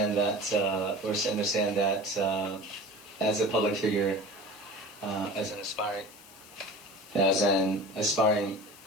that as a public figure, as an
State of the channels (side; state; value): left; noise; hiss, 22 dB below the sound